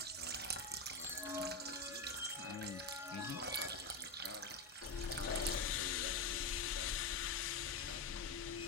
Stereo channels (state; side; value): quieter; right; 3.6 dB